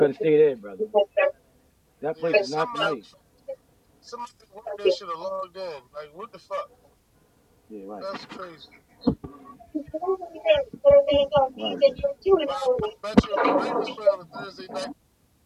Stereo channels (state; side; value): identical; both; correlation 1.00